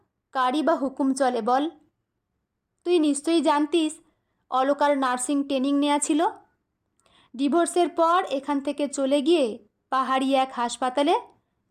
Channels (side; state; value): both; identical; correlation 1.00